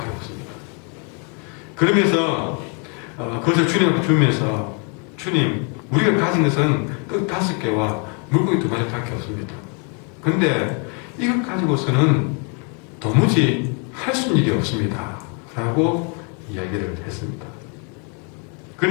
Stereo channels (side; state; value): right; quieter; 37.0 dB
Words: 없습니다. 그러면서 그것을 주님 앞에 주면서 주님, 우리가 가진 것은 떡 5개와 물고기 2마리밖에 없습니다. 그런데 이것 가지고서는 도무지 할 수 있는 일이 없습니다. 라고 이야기를 했습니다.